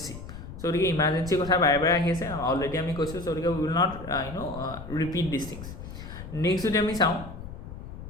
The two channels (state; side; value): noise; left; rumble, 11 dB below the sound